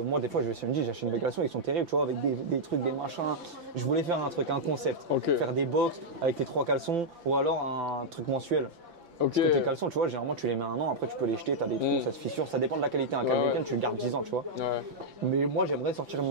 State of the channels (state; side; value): late; left; 5.9 ms